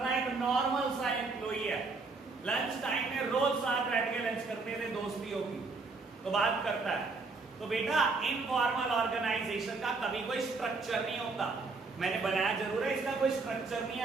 है, एक नॉर्मल सा एम्प्लॉई है, लंच टाइम में रोज साथ बैठ के लंच करते थे, दोस्ती होगी तो बात करता है, तो बेटा इनफॉर्मल ऑर्गेनाइजेशन का कभी कोई स्ट्रक्चर नहीं होता, मैंने बनाया जरूर है, इसका कोई स्ट्रक्चर नहीं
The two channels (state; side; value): quieter; left; 4.0 dB